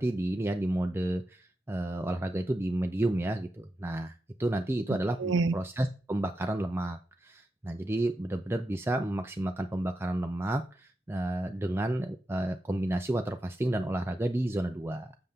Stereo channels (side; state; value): both; normal; correlation 0.88